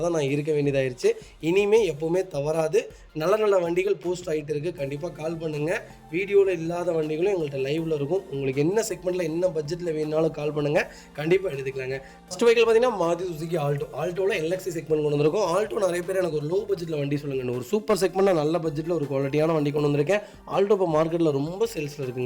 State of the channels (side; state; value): both; identical; correlation 1.00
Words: தான் நான் இருக்க வேண்டியதாகிடுச்சு. இனிமேல் எப்போவுமே தவறாது. நல்ல வண்டிகள் போஸ்ட் ஆகிட்டு இருக்குது. கண்டிப்பாக கால் பண்ணுங்கள். வீடியோவில் இல்லாத வண்டிகளும் எங்கள்கிட்ட லைவில் இருக்கும். உங்களுக்கு என்ன செக்மெண்ட்டில் என்ன பட்ஜெட்டில் வேணுனாலும் கால் பண்ணுங்கள். கண்டிப்பாக எடுத்துக்கலாங்க. ஃபஸ்ட் வெஹிக்கிள் பார்த்தீங்கன்னா மாருதி சுசுகி ஆல்டோவில் எல்எக்ஸி செக்மெண்ட் கொண்டு வந்திருக்கும். ஆல்டோ நிறைய பேர் எனக்கு ஒரு லோ பட்ஜெட்டில் வண்டி சொல்லுங்கள். ஒரு சூப்பர் செக்மெண்ட்டில் நல்ல பட்ஜெட்டில் ஒரு குவாலிட்டியான வண்டி கொண்டு வந்திருக்கேன். ஆல்டோ இப்போ மார்க்கெட்டில் ரொம்ப சேல்ஸில்